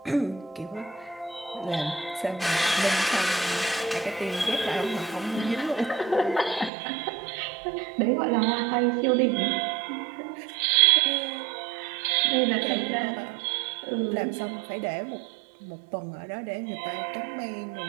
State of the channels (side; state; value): left; drops out; at 6.7 s